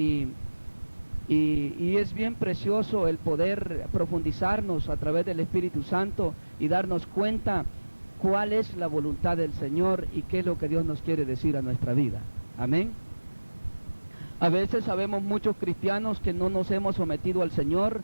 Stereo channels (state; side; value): inverted; both; correlation -1.00